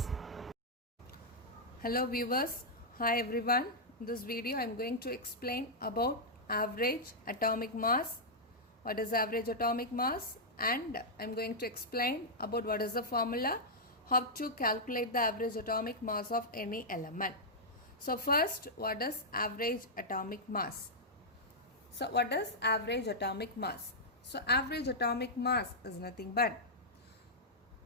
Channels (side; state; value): both; normal; correlation -0.08